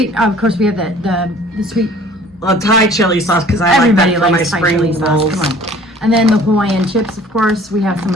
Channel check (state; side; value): normal; both; correlation 0.51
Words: of course we have the sweet Thai chili sauce because I like that for my spring rolls. Come on. And then the Hawaiian chips, of course, we have some